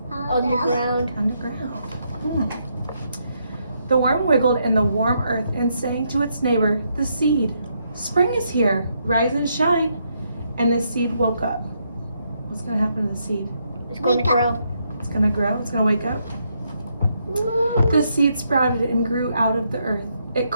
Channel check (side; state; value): both; inverted; correlation -0.77